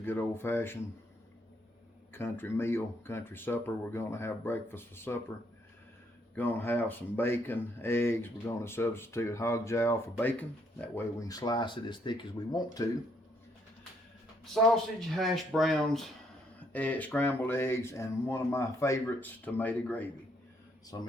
old-fashioned country meal, country supper. We're going to have breakfast for supper. Going to have some bacon, eggs. We're going to substitute hog jowl for bacon. That way we can slice it as thick as we want to. Sausage, hash browns, scrambled eggs, and one of my favorites, tomato gravy. Some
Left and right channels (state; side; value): normal; both; correlation 0.71